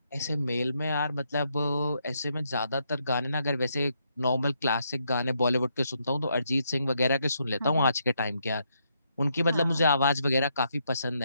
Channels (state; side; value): inverted; both; correlation -0.77